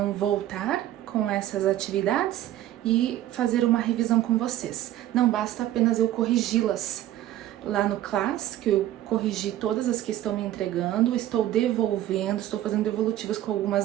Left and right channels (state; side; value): quieter; left; 13.3 dB